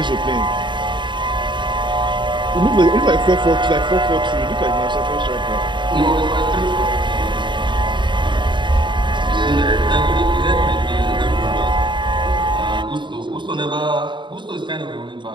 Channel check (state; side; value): late; left; 0.23 ms